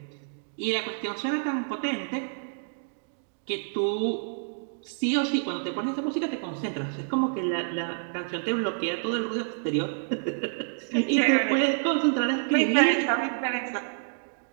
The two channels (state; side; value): silent; left; digital silence